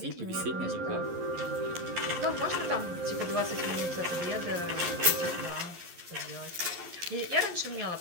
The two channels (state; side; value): late; left; 11 ms